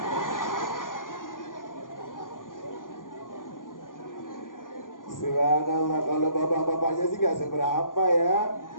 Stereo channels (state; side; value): late; right; 0.89 ms